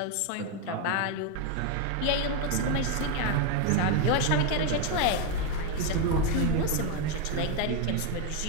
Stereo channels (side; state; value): both; different; correlation 0.02